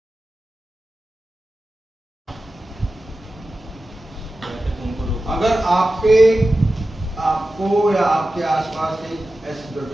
अगर आपको या आपके आसपास कहीं ऐसी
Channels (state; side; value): normal; both; correlation 0.93